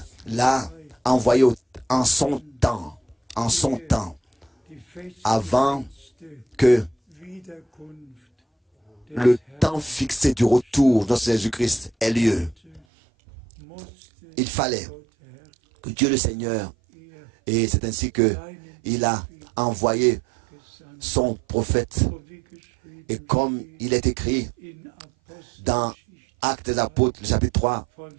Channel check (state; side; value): drops out; left; at 12.8 s